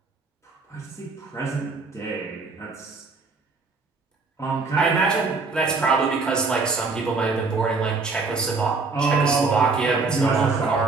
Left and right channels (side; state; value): left; quieter; 4.2 dB